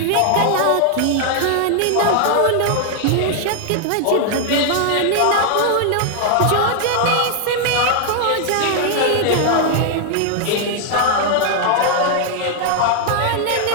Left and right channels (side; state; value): both; different; correlation 0.00